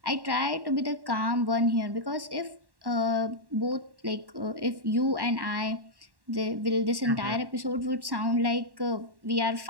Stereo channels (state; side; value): late; left; 1.1 ms